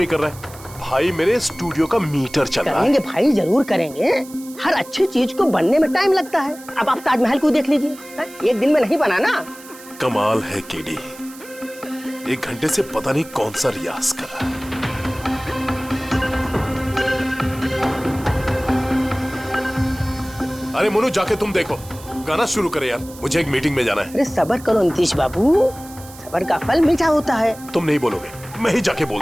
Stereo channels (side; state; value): right; noise; hiss, 19 dB below the sound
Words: कर रहा है। भाई मेरे स्टूडियो का मीटर चल रहा है। करेंगे भाई, जरूर करेंगे। हर अच्छी चीज को बनने में टाइम लगता है। अब आप ताजमहल को देख लीजिए, एक दिन में नहीं बना ना। कमाल है केडी, 1 घंटे से पता नहीं कौन सा रियाज कर रहा है। अरे मनु, जाके तुम देखो, गाना शुरू करे यार, मुझे एक मीटिंग में जाना है। अरे सब्र करो नीतीश बाबू, सब्र का फल मीठा होता है। तुम नहीं बोलोगे, मैं ही जाके बोल